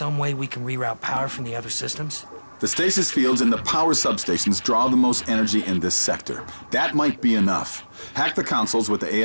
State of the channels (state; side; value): inverted; both; correlation -1.00